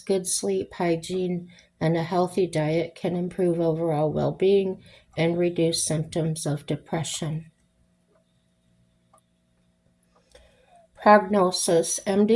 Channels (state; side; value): identical; both; correlation 1.00